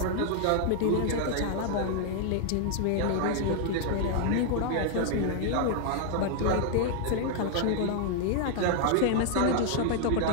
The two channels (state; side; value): different; both; correlation 0.00